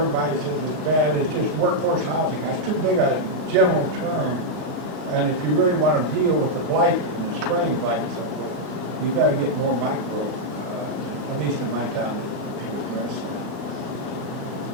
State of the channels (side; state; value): left; late; 20 ms